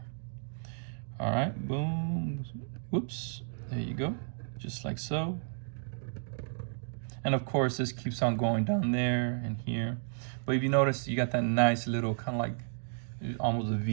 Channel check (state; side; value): silent; left; digital silence